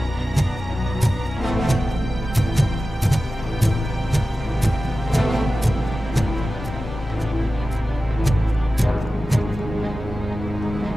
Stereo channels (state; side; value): normal; both; correlation 0.94